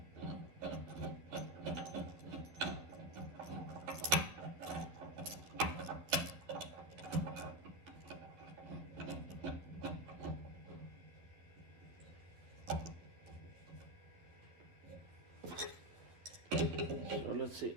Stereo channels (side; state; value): left; late; 11 ms